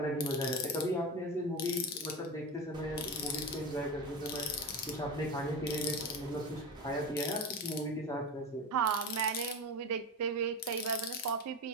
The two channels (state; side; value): normal; both; correlation 0.23